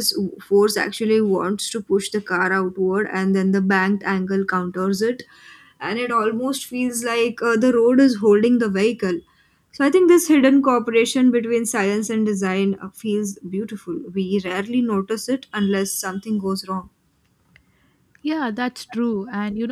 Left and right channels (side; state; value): both; identical; correlation 1.00